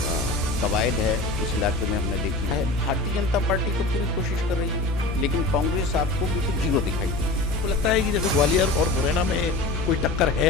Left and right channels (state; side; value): noise; left; hum, 4 dB below the sound